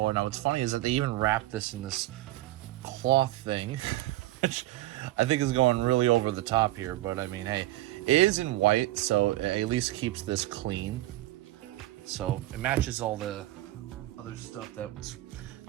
Now what's funny is that they even wrapped this in this cloth thing, which I think is going really over the top here, but I mean, hey, it is in white, so it at least keeps this clean. So it matches all the other stuff that's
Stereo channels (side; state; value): left; quieter; 16.6 dB